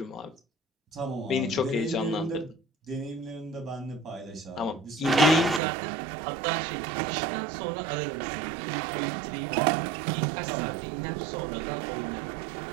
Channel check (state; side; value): drops out; left; at 5.6 s